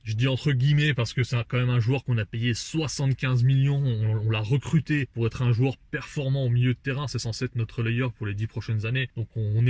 Je dis entre guillemets parce que c'est quand même un joueur qu'on a payé 75 millions, on l'a recruté pour être un joueur performant au milieu de terrain, c'est censé être notre relayeur pour les 10 prochaines années. Donc on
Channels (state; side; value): identical; both; correlation 1.00